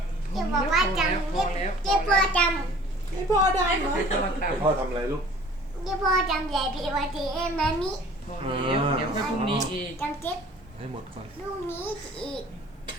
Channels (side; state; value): both; normal; correlation 0.50